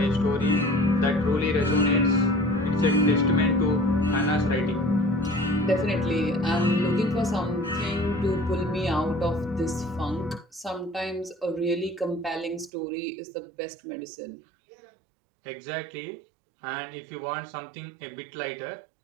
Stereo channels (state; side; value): drops out; left; at 12.7 s